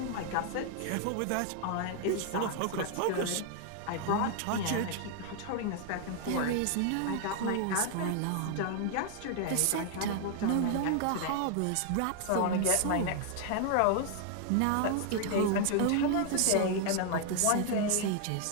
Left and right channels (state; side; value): different; both; correlation 0.00